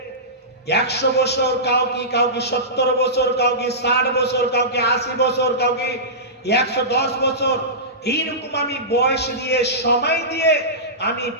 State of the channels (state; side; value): normal; both; correlation -0.19